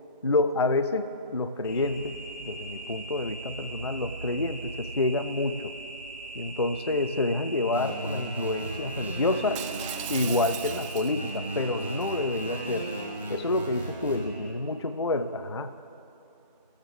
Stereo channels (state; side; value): inverted; both; correlation -0.36